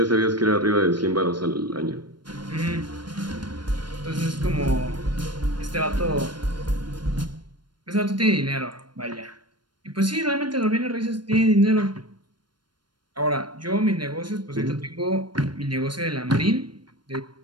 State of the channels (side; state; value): left; late; 0.72 ms